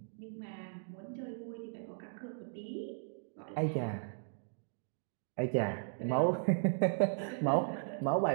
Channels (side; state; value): left; silent; digital silence